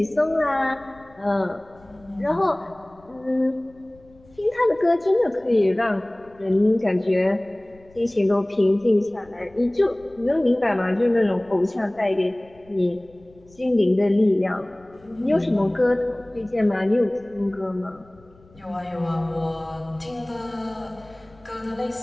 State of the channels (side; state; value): left; noise; rumble, 27 dB below the sound